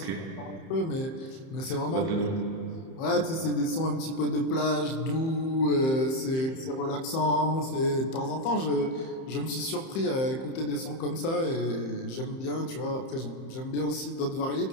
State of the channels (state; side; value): late; right; 31 ms